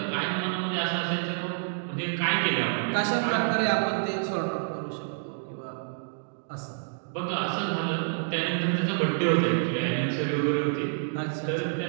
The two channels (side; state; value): left; silent; digital silence